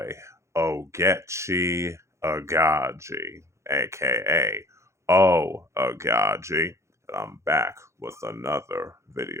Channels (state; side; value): late; left; 0.14 ms